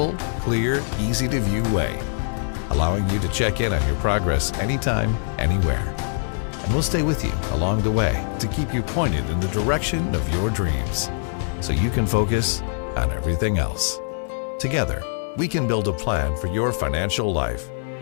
clear, easy-to-view way, allowing you to check in on your progress anytime, anywhere. And we'll stay with you along the way to keep you pointed in the direction of your dreams so you can focus on everything else. Together, we can build a plan for your financial life.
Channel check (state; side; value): silent; right; 63 dB below the other